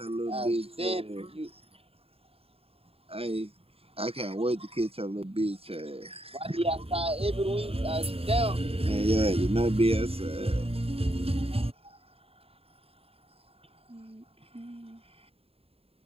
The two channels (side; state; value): left; late; 0.28 ms